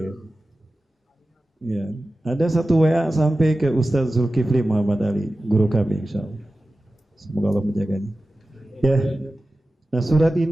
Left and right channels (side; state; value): both; normal; correlation 0.95